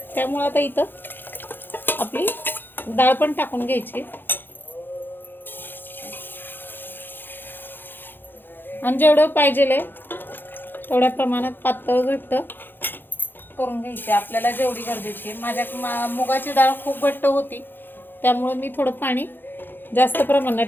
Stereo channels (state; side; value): late; right; 0.097 ms